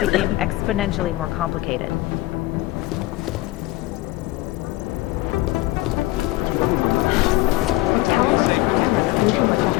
became exponentially more complicated.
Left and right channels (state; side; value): quieter; right; 18.5 dB